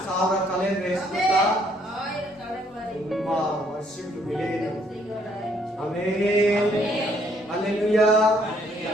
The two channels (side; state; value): both; normal; correlation 0.67